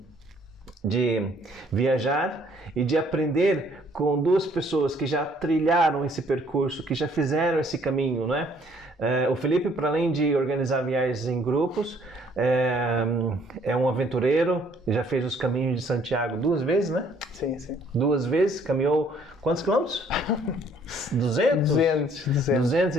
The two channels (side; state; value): both; normal; correlation 0.62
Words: de viajar e de aprender com duas pessoas que já trilharam esse percurso, que já fizeram esse caminho, né? O Felipe, para além de organizar viagens em grupos, é um aventureiro, já fez os caminhos de Santiago 2 vezes, né? Sim. 2 vezes, caminhou quantos quilômetros? 200? 200